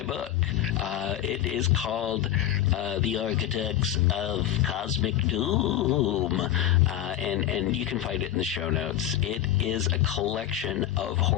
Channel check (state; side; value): quieter; right; 12.2 dB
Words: book. It is called The Architects of Cosmic Doom, and you can find it in the show notes. It is a collection of